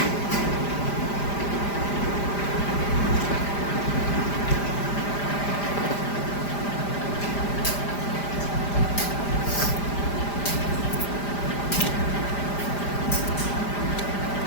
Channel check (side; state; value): right; late; 5.0 ms